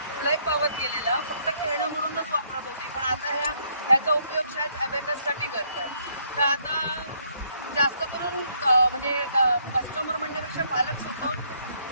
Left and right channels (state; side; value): inverted; both; correlation -0.69